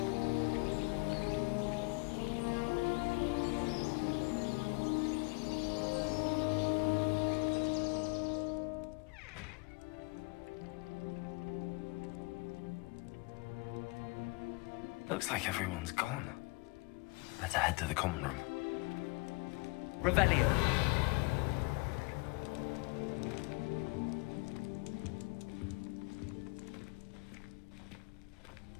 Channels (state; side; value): quieter; right; 28.8 dB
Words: Looks like everyone's gone. Better head to the common room. Revelio.